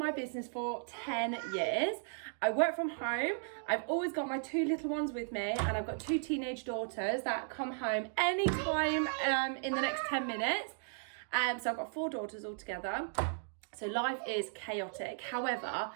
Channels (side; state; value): left; silent; digital silence